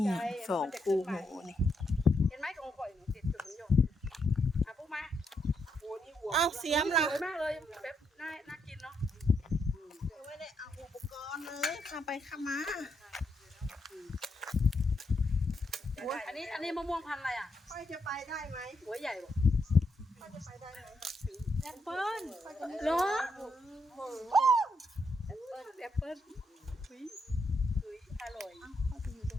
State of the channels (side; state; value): both; normal; correlation 0.79